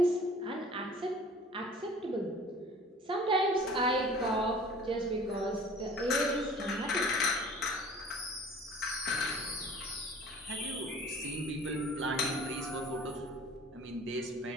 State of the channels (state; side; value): normal; both; correlation 0.47